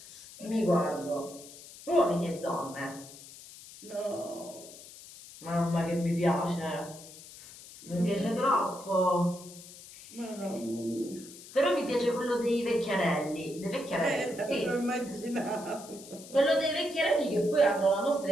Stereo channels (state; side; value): noise; left; hiss, 17 dB below the sound